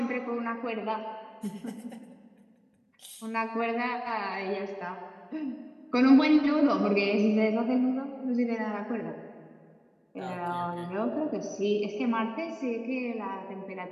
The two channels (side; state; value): both; identical; correlation 1.00